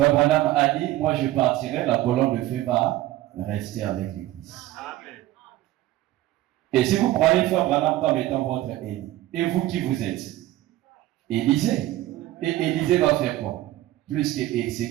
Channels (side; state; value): left; quieter; 15.5 dB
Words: Branham a dit, moi je partirai, la colonne de feu va rester avec l'église. Amen. Et si vous croyez Frère Branham comme étant votre Élie, et vous qui vous êtes? Élisée. Et Élisée va faire quoi? Plus que ce